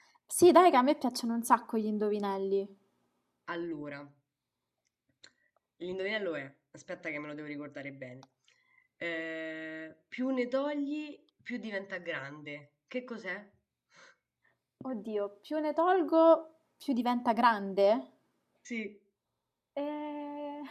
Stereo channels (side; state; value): both; identical; correlation 1.00